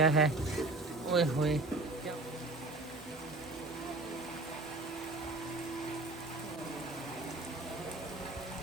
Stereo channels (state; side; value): quieter; left; 3.1 dB